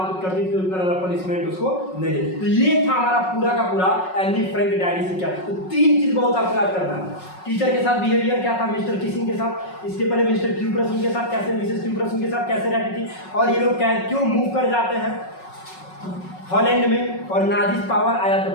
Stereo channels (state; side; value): late; right; 5.4 ms